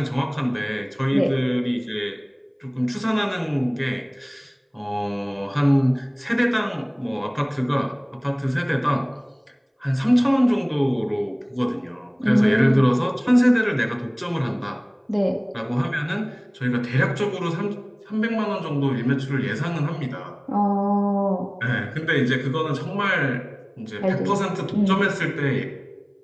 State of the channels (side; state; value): both; identical; correlation 1.00